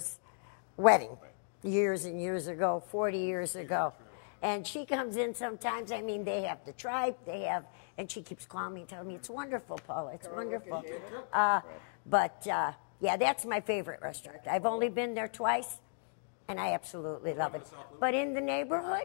wedding years and years ago, 40 years ago. And she comes in sometimes. I mean, they have the tribe, and she keeps calling me and telling me, it's wonderful, Paula, it's Carl, look at wonderful. David. But, yeah, that's my favorite restaurant. I've only been there twice, and I absolutely love it. But in the neighborhood,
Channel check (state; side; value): silent; right; digital silence